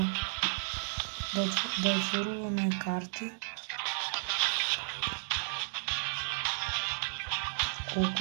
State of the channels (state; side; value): silent; left; digital silence